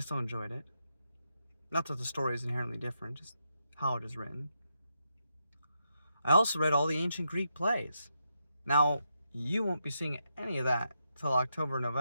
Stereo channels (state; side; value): inverted; both; correlation -0.83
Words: still enjoyed it. Not that the story is inherently different, just how it is written. I also read all the ancient Greek plays. Now, you won't be seeing any of that till October,